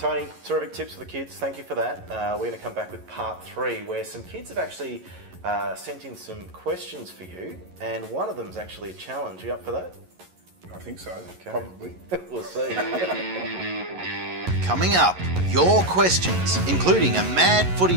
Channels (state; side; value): late; left; 11 ms